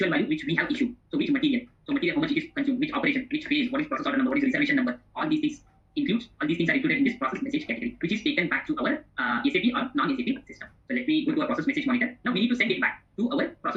value which we have issued? So which material? So material, how much it is consumed? Which operation? Which phase? What is process order number? What is reservation number? All these things all these things are included in this process message category, which is taken back to our SAP or non-SAP system. So let me go to our process message monitor. Now we need to send it back to our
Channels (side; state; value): both; identical; correlation 1.00